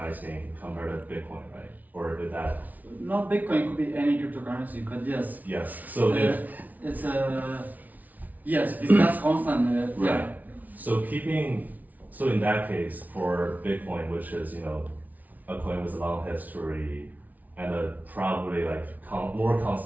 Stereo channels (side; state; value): left; late; 0.076 ms